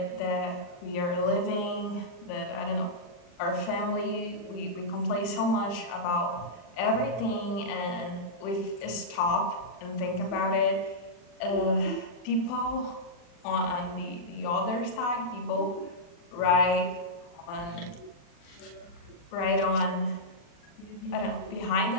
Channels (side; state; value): right; late; 40 ms